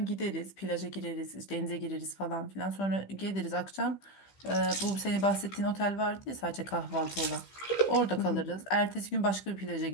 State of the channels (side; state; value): right; late; 15 ms